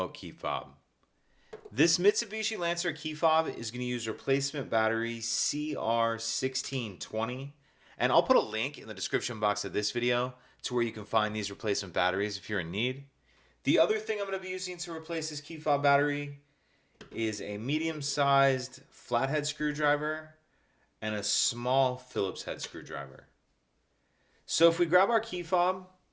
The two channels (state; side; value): identical; both; correlation 1.00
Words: key fob. This Mitsubishi Lancer key fob is going to use replacement battery CR1620, and I'll put a link in the description box of this video to where you can find these replacement batteries if you're in need. The other thing I'm going to be using to replace this key fob battery is a medium-sized flathead screwdriver and a small Phillips head screwdriver. So if we grab our key fob,